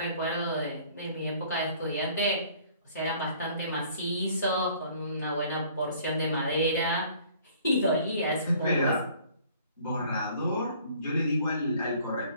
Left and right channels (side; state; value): both; inverted; correlation -0.55